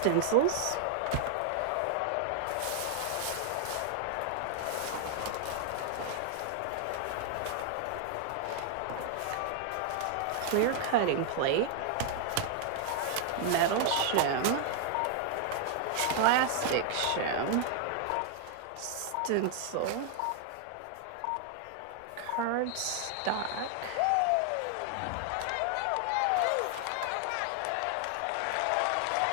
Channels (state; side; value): different; both; correlation 0.00